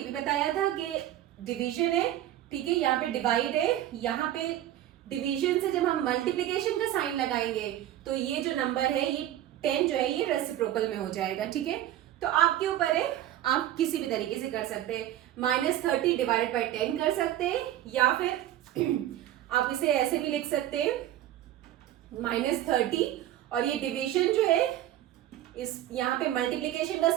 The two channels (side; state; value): left; quieter; 12.9 dB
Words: भी बताया था कि डिवीजन है, ठीक है, यहाँ पे डिवाइड है, यहाँ पे डिवीजन से जब हम मल्टीप्लिकेशन का साइन लगाएंगे तो ये जो नंबर है ये 10 जो है ये रेसिप्रोकल में हो जाएगा, ठीक है। तो आपके ऊपर है, आप किसी भी तरीके से कर सकते हैं, -30 डिवाइडेड बाई 10 कर सकते हैं, या फिर आप इसे ऐसे भी लिख सकते हैं -30 और ये डिवीजन जो है इस यहाँ पे मल्टीप्लिकेशन का